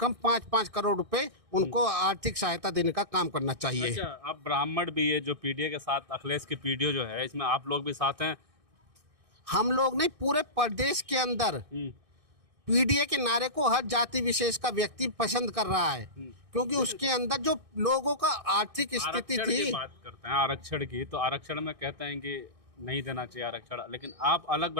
5-5 करोड़ रुपए उनको आर्थिक सहायता देने का काम करना चाहिए। अच्छा, आप ब्राह्मण भी है जो पीडीए के साथ, अखिलेश की पीडीए जो है, इसमें आप लोग भी साथ हैं? हम लोग नहीं, पूरे प्रदेश के अंदर पीडीए के नारे को हर जाति विशेष का व्यक्ति पसंद कर रहा है, क्योंकि उसके अंदर जो लोगों का आर्थिक स्थिति थी। बात करते हैं आरक्षण की, तो आरक्षण में कहते हैं कि नहीं देना चाहिए आरक्षण, लेकिन आप अलग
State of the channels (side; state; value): left; late; 1.6 ms